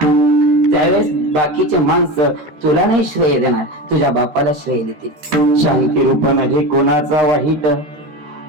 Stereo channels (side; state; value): left; late; 13 ms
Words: त्यावेळेस बाकीचे माणसं तुला नाही श्रेय देणार, तुझ्या बापाला श्रेय देतील. शांती रूप नव्हे कोणाचा वाईट,